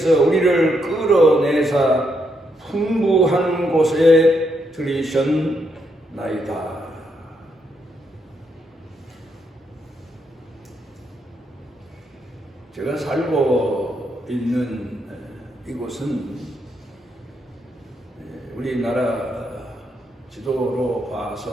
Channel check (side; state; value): both; normal; correlation 0.78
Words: 우리를 끌어내사 풍부한 곳에 들이셨나이다. 제가 살고 있는 이곳은 우리나라 지도로